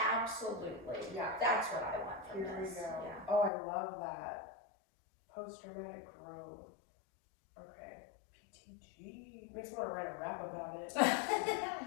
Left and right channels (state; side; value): drops out; right; at 3.5 s